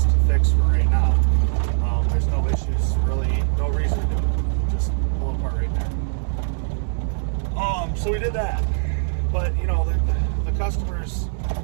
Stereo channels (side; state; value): left; silent; digital silence